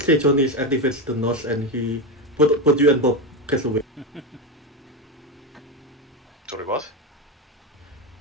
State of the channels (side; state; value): both; normal; correlation 0.13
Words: say Johnny activates the nose and he put you and Bob gets away. Sorry, what?